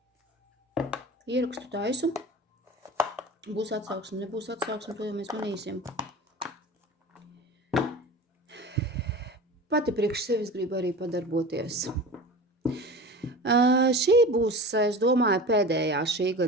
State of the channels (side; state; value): both; normal; correlation 0.34